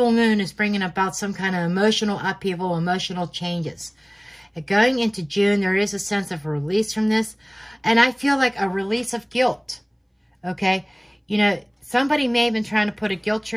moon is bringing about some kind of emotional upheaval, emotional changes. And going into June, there is a sense of release from this. And I feel like a release of guilt, okay? You know, somebody may have been trying to put a guilt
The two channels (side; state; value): both; identical; correlation 1.00